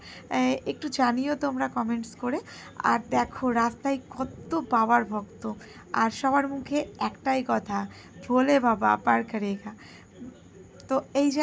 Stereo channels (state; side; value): identical; both; correlation 1.00